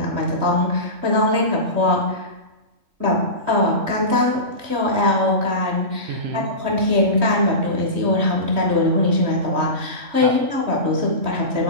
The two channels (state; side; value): late; left; 3.2 ms